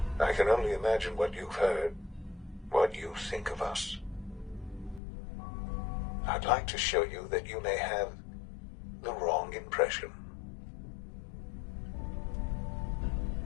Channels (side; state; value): right; drops out; at 5.0 s